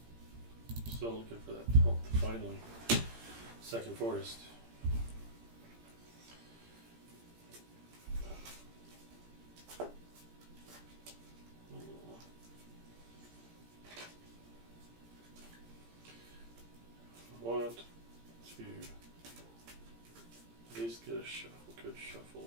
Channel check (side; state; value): left; late; 17 ms